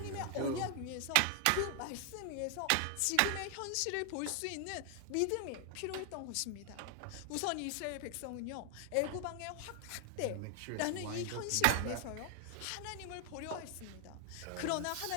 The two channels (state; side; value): different; both; correlation 0.00